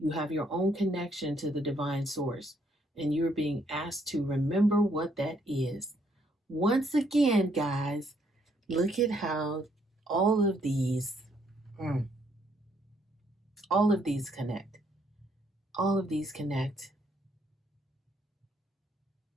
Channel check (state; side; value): normal; both; correlation 0.70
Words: have your own connection to the divine source, and you're being asked to remember what that is. Once again, guys, look at how all of these, all of these connect. All of these connect.